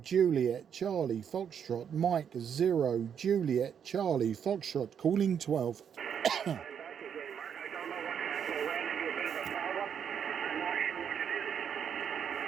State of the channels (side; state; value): left; quieter; 8.0 dB